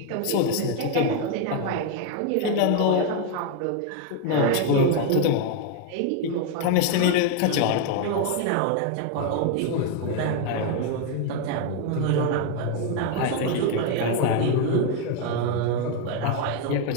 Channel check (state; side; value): different; both; correlation 0.01